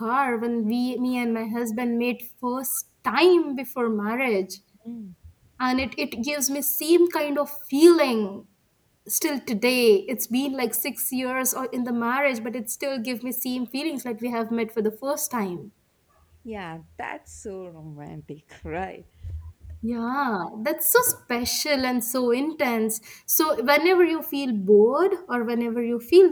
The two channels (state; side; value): identical; both; correlation 1.00